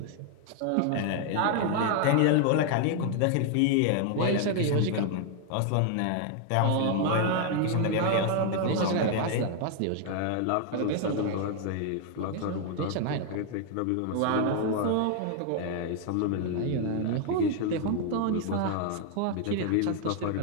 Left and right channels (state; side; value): different; both; correlation 0.00